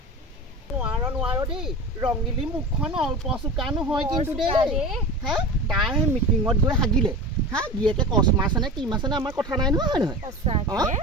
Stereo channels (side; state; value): both; normal; correlation 0.31